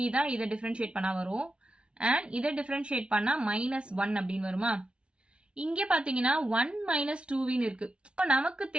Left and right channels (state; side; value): late; left; 0.057 ms